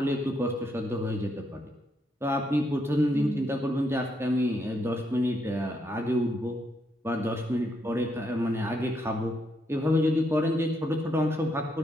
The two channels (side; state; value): both; normal; correlation 0.77